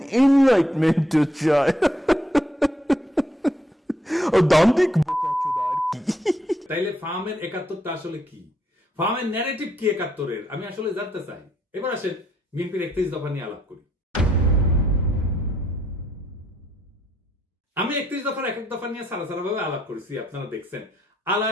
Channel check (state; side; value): normal; both; correlation 0.73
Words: এনলাইটমেন্ট চাই। দান্তিক বোকাচোদা আর কি। তাইলে ফার্মের 71টা আসলে কি? ফার্মের ন্যারেটিভ কি 71-এর? আমি আসলে জানতে চাই। এবার আসেন বিএনপির 31 দফা নিয়ে আলাপ করি। আমি 31 দফার এক এক দফা নিয়ে সারা ভাবে আলাপ করেছি, আপনারা দেখছেন।